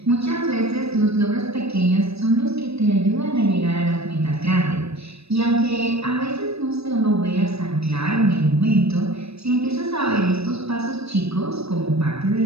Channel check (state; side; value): late; left; 0.78 ms